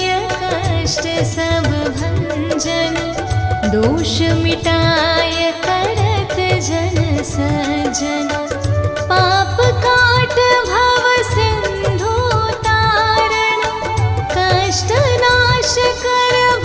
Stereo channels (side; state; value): both; identical; correlation 1.00